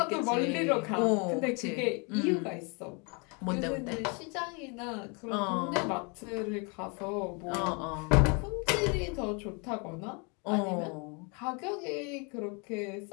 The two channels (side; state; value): right; quieter; 32.8 dB